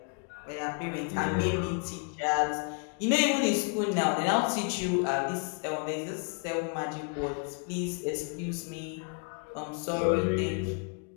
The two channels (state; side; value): quieter; right; 38.0 dB